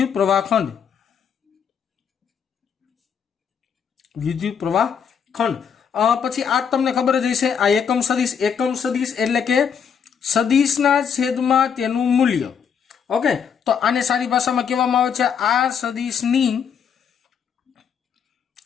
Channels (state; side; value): quieter; right; 7.2 dB